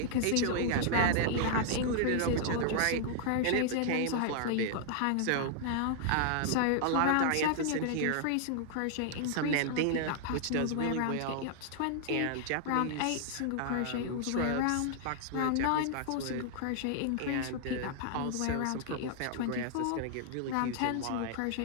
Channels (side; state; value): both; different; correlation -0.01